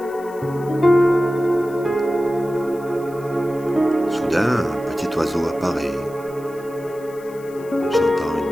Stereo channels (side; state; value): left; noise; hiss, 24 dB below the sound